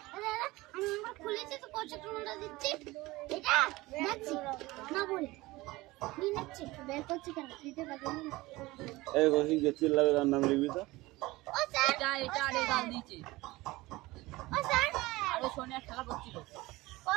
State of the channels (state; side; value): quieter; left; 20.2 dB